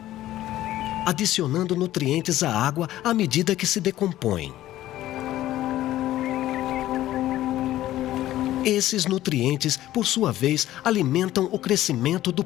adicionando nutrientes à água à medida que se decompõem. Esses nutrientes, por sua vez, alimentam o crescimento do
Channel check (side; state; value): right; quieter; 14.2 dB